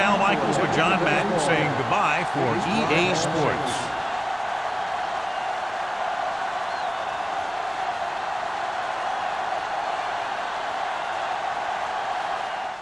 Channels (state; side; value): identical; both; correlation 1.00